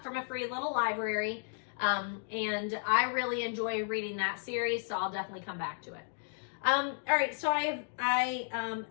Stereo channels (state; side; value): silent; right; digital silence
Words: from a free little library, and I really enjoy reading that series, so I'll definitely come back to it. All right, so I